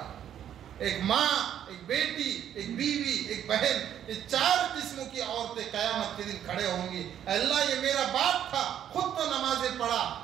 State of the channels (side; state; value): left; quieter; 10.1 dB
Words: ایک ماں، ایک بیٹی، ایک بیوی، ایک بہن، یہ 4 قسموں کی عورتیں قیامت کے دن کھڑے ہوں گی۔ اللہ یہ میرا باپ تھا، خود تو نمازیں پڑھا،